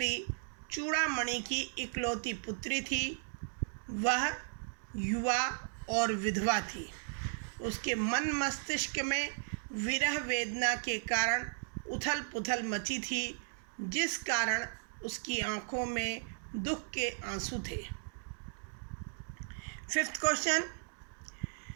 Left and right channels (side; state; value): left; silent; digital silence